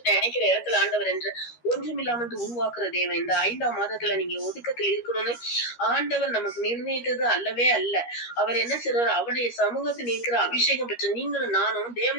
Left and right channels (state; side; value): late; right; 13 ms